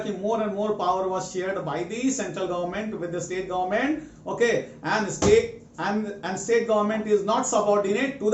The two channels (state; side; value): identical; both; correlation 1.00